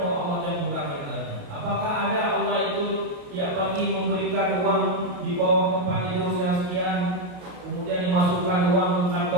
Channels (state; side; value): late; left; 28 ms